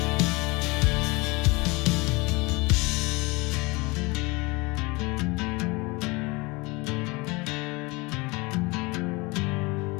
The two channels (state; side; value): quieter; right; 25.2 dB